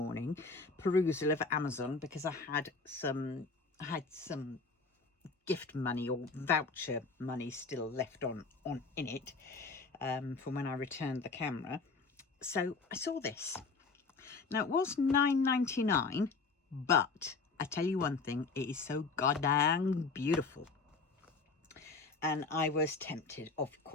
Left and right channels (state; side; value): quieter; right; 4.3 dB